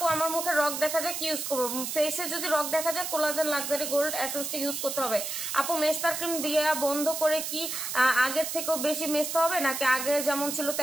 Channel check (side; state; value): right; noise; hiss, 4 dB below the sound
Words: আমার মুখে রক দেখা যায়, কি ইউজ করবো? ফেসে যদি রক দেখা যায় কোলাজেন লাক্সারি গোল্ড এসেন্সটা ইউজ করতে হবে। আপু মেস্তার ক্রিম দিয়ে বন্ধ করে কি আগের থেকেও বেশি মেস্তা হবে, নাকি আগে যেমন ছিল